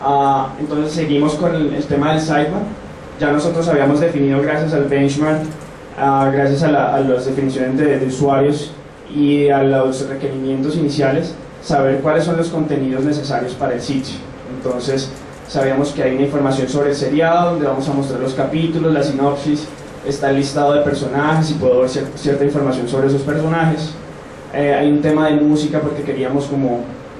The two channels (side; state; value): both; identical; correlation 1.00